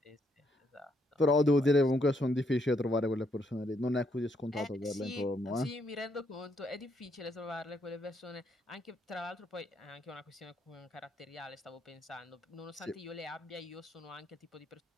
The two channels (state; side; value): normal; both; correlation 0.74